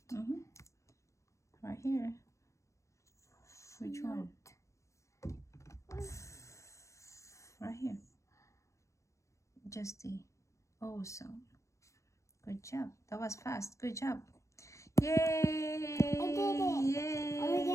Right here. Which one? Right here. Just the O sound. Good job. That was fast. Good job. Yay! I did it. Yay! I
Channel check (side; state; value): right; late; 0.15 ms